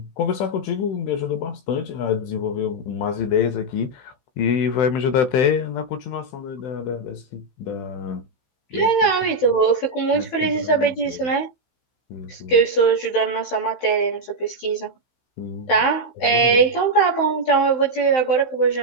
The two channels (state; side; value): late; right; 16 ms